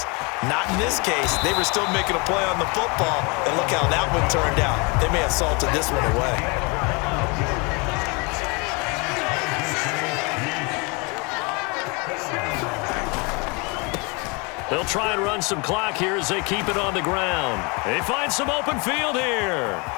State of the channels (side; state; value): right; quieter; 29.9 dB